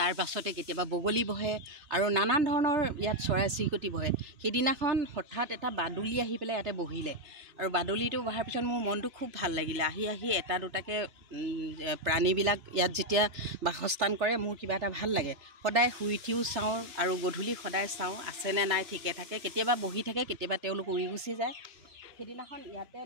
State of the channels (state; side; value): late; left; 3.0 ms